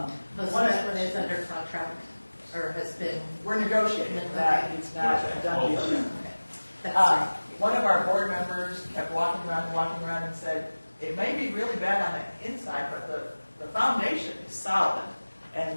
Most of one of- that one is under contract, or has been, we're negotiating that, it's not a done deal yet. that's right. One of our board members kept walking around and said, it may be really bad on the inside, but the foundation is solid. And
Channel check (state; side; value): inverted; both; correlation -1.00